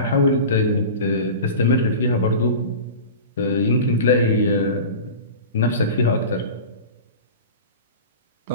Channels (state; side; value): inverted; both; correlation -0.33